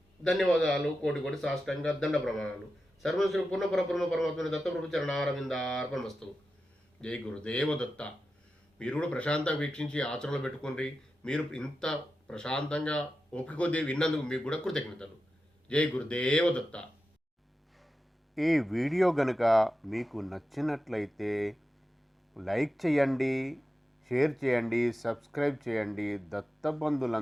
ధన్యవాదాలు, కోటి సాష్టాంగ దండ ప్రమాణాలు. సర్వం శ్రీ పూర్ణ పరబ్రహ్మ పరమాత్మ దత్తప్రభు చరణారవిందార్పణమస్తు. జై గురుదేవ దత్త. మీరు కూడా ప్రశాంతంగా వీక్షించి ఆచరణలో పెట్టుకోండి. మీరు ఇంత ప్రశాంతంగా ఓపిక కొద్దీ విన్నందుకు మీకు కూడా కృతజ్ఞతలు. జై గురుదేవ దత్త. ఈ వీడియో గనుక మీకు నచ్చినట్లయితే లైక్ చేయండి, షేర్ చేయండి, సబ్స్క్రైబ్ చేయండి,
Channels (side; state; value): both; normal; correlation 0.91